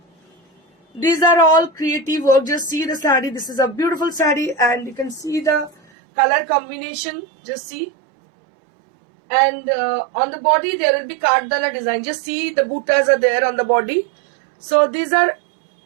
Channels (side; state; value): left; drops out; at 5.8 s